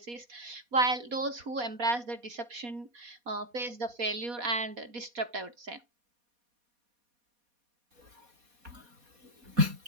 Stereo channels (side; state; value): left; late; 4.2 ms